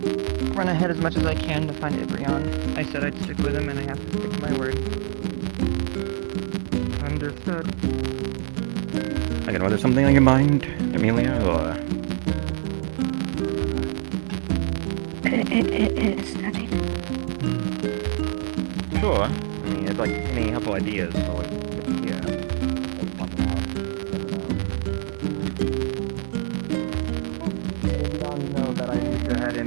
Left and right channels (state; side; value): silent; left; digital silence